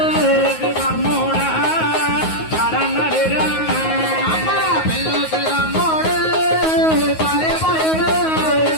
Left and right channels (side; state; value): right; late; 9.4 ms